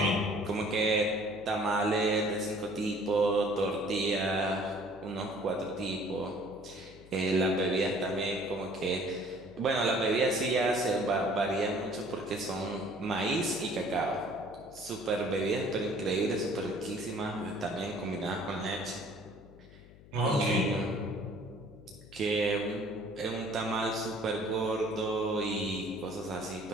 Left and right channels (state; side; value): noise; left; hum, 21 dB below the sound